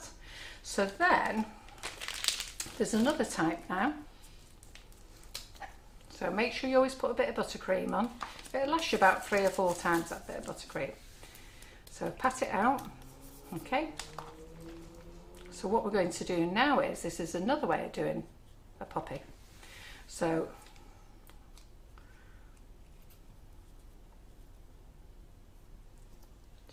So then, there's another type now. So make sure you always put a bit of buttercream on. It'll last you about 3 or 4 times, that bit of buttercream. So pat it out, okay. So what we're going to do now is, this is another way of doing a poppy. So you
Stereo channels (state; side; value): identical; both; correlation 1.00